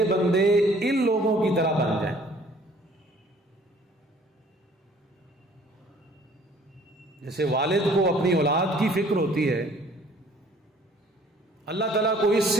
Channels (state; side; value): normal; both; correlation 0.56